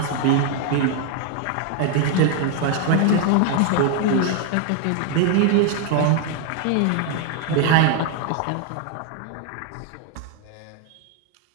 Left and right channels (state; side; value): different; both; correlation 0.00